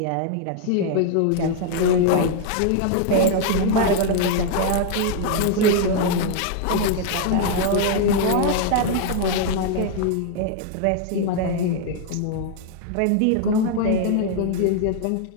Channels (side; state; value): both; different; correlation 0.00